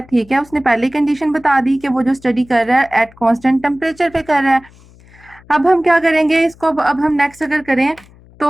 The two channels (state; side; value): noise; left; hum, 26 dB below the sound